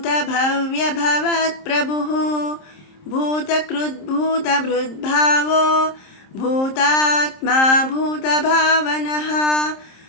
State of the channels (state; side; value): late; right; 27 ms